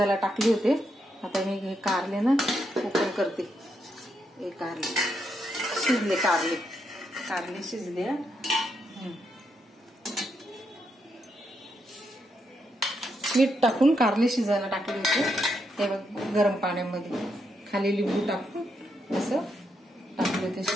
टाकले होते. आता मी हे कारले ना ओपन करते. हे कारले शिजले, कारले शिजले. मीठ टाकून कारले शिजायला टाकले होते. हे बघ गरम पाण्यामध्ये खाली लिंबू टाकून असं टाकले ते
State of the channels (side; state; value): both; normal; correlation 0.80